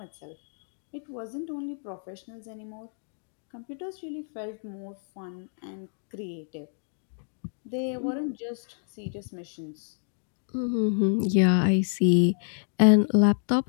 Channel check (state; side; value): silent; right; digital silence